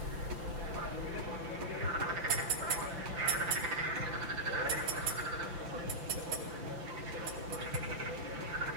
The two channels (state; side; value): late; left; 5.8 ms